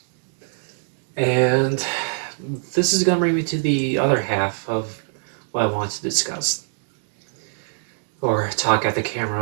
And this is going to bring me to the other half of what I want to discuss or talk at the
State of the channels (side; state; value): left; silent; digital silence